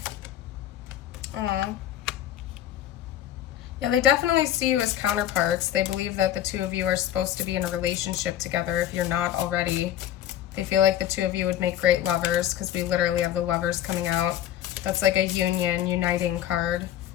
Yeah, they definitely see you as counterparts. They believe that the two of you are supposed to be in a relationship together if you're not already. They feel like the two of you would make great lovers, because we literally have the Lovers coming out. That's like a union, uniting card.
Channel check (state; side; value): quieter; right; 11.7 dB